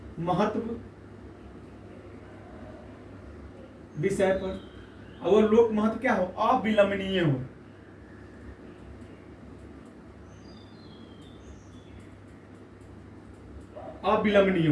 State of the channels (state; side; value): identical; both; correlation 1.00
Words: महत्व विषय पर, और लोक महत्व क्या हो, अविलंबनीय हो। अविलंबनीय